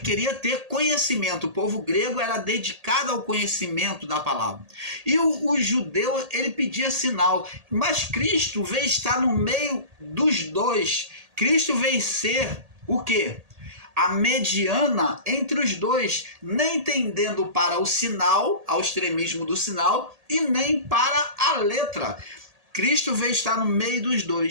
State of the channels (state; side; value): late; left; 1.8 ms